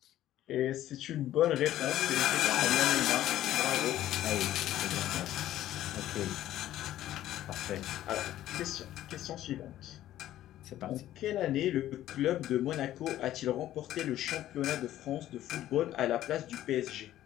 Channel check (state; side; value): quieter; right; 13.3 dB